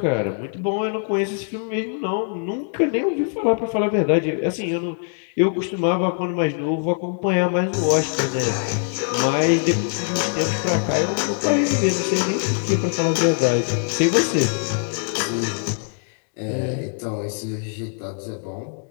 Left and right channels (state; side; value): silent; right; 61 dB below the other